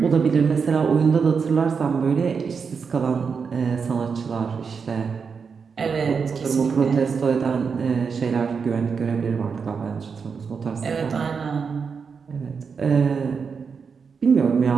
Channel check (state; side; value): quieter; left; 5.7 dB